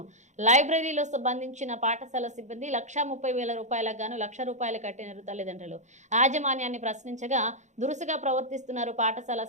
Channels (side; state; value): left; late; 0.34 ms